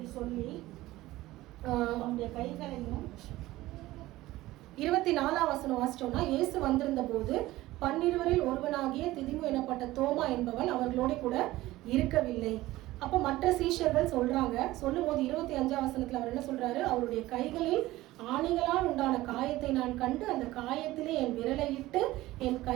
சொல்லி அவனுடைய கைகளையும் 24ஆம் வசனம் வாசிச்சோம்னா, இயேசு வந்திருந்த போது 12 ஒருவனாகிய திதிமு எனப்பட்ட தோமா என்பவன் அவர்களோட கூட இருக்கவில்லை. அப்போ மற்ற சீஷர்கள் சொல்றாங்க. சொல்லும் போது 25ஆம் வசனத்துல அவர் என்ன சொல்றாரு, அவருடைய கைகளில் ஆணிகளால் உண்டான காயத்தை நான் கண்டு அந்த காயத்திலே என் விரலை இட்டு என்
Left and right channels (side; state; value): left; quieter; 17.2 dB